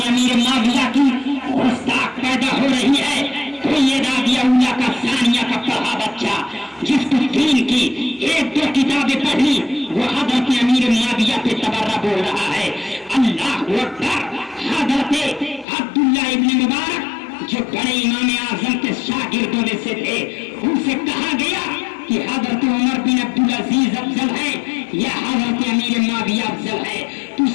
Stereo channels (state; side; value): drops out; right; at 15.7 s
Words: امیر معاویہ کی گستاخ پیدا ہو رہی ہے۔ کوئی یہ رابعہ اولیاء کا ثانیہ کا پڑھا بچہ جس کو دین کی ایک دو کتابیں پڑھی، وہ حضرت امیر معاویہ پہ تبرہ بول رہا ہے۔ اللہ اکبر، حضرت عبداللہ ابن مبارک جو بڑے امام اعظم کے شاگردوں میں سے تھے، ان سے کہا گیا کہ حضرت عمر بن عبدالعزیز افضل ہے یا حضرت امیر معاویہ افضل ہے؟ تو